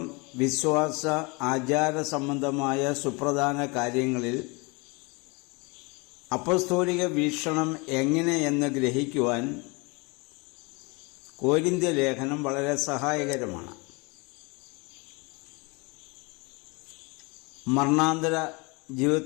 വിശ്വാസ ആചാര സംബന്ധമായ സുപ്രധാന കാര്യങ്ങളിൽ അപ്പസ്തോലിക വീക്ഷണം എങ്ങനെയെന്ന് ഗ്രഹിക്കുവാൻ കൊരിന്ത്യ ലേഖനം വളരെ സഹായകരമാണ്. മരണാന്തര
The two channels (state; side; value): quieter; right; 28.4 dB